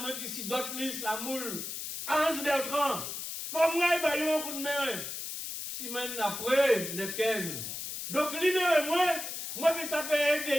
qui sont d'autres listes à Moule, à Hans Bertrand, Fomra et Bayon un coup de main. 6 semaines après, le 15. Donc, libérez-moi, moi, je ça fait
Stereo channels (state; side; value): noise; left; hiss, 6 dB below the sound